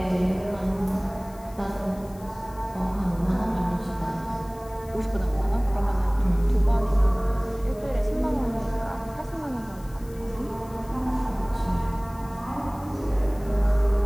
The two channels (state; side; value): noise; left; hiss, 24 dB below the sound